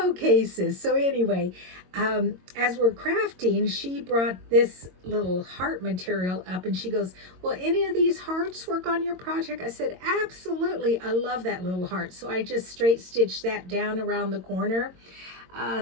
So anyway, as we're crafting, she brought this little heart material up, and she goes, "Will any of these hearts work on your project?" I said, "Absolutely. I love that little heart." So I just straight stitched that down around the corner.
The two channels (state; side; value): late; left; 22 ms